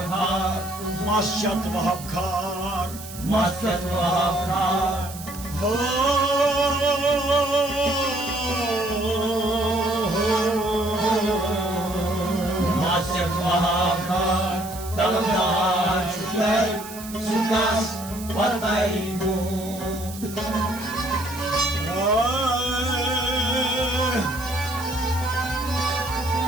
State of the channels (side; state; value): right; noise; hiss, 14 dB below the sound